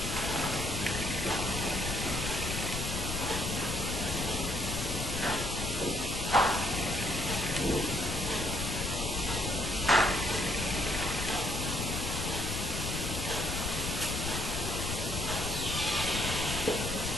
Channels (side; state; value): left; noise; rumble, 4 dB below the sound